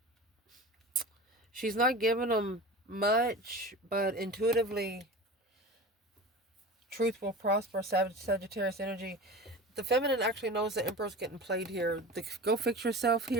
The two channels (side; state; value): both; normal; correlation 0.33